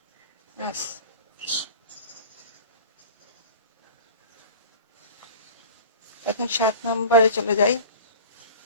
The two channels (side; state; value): both; inverted; correlation -0.39